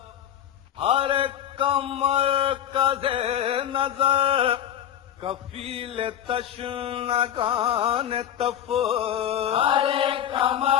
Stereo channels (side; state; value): right; quieter; 10.4 dB